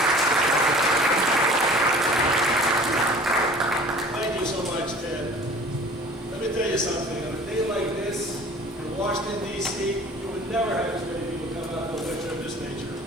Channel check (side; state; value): both; normal; correlation 0.46